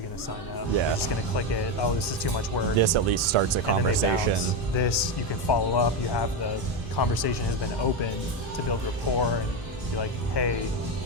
going to sign up. Yeah. They're just going to click it. Oh, this is too much work. This at least starts a conversation. This, you can follow up. You have the conversation has been open to build rapport and be like, hey,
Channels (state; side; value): normal; both; correlation 0.11